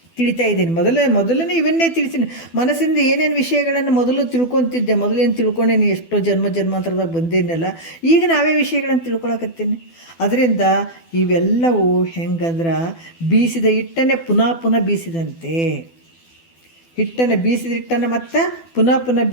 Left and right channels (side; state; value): right; late; 12 ms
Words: ತಿಳಿತಾ ಇದ್ದೀನಿ. ಮೊದಲನೇ ಇವನ್ನೇ ತಿಳಿಸ್ತೀನಿ. ಮನಸ್ಸಿಂದ ಏನೇನು ವಿಷಯಗಳನ್ನು ಮೊದಲು ತಿಳ್ಕೊತಿದ್ದೆ, ಮೊದಲೇನು ತಿಳ್ಕೊಂಡೇನಿ, ಎಷ್ಟೋ ಜನ್ಮಾಂತರದಾಗ ಬಂದೇನಲ್ಲ, ಈಗ ನಾವೇ ವಿಷಯಗಳನ್ನು ತಿಳ್ಕೊಳಕತ್ತೀನಿ. ಅದರಿಂದ ಇವೆಲ್ಲವೂ ಹೆಂಗಂದ್ರೆ ಬೀಸಿದ ಹಿಟ್ಟನ್ನೇ ಪುನಃ ಬೀಸಿದಂತೆ. ಬೀಸಿದ ಹಿಟ್ಟನ್ನು ಮತ್ತು ಪುನಃ